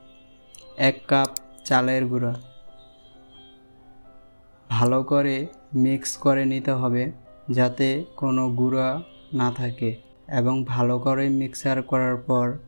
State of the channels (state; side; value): inverted; both; correlation -1.00